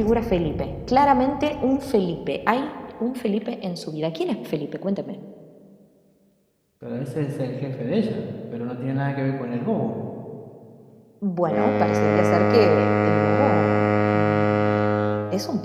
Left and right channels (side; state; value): both; identical; correlation 1.00